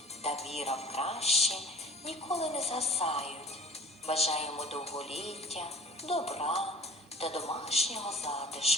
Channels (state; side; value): normal; both; correlation 0.45